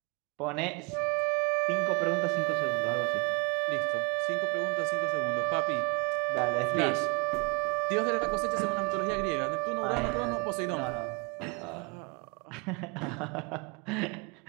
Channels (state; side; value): quieter; left; 32.1 dB